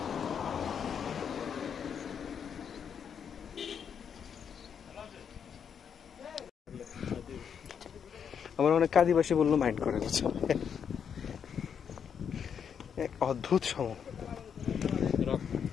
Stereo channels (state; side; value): quieter; right; 7.5 dB